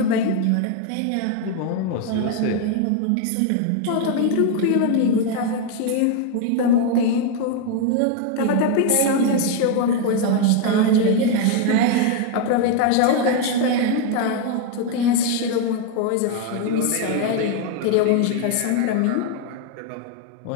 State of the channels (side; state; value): both; different; correlation 0.01